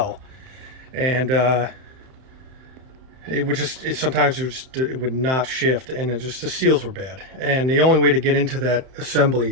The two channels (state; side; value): late; left; 31 ms